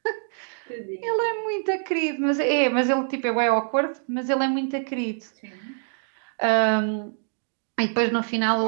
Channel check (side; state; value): left; silent; digital silence